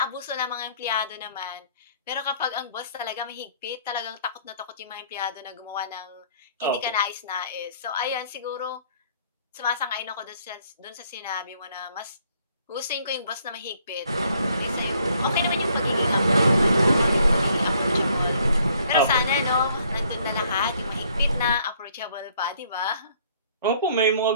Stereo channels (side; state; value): both; inverted; correlation -0.63